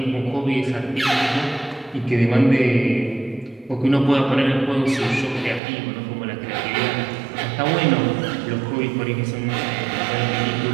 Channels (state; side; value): drops out; left; at 5.6 s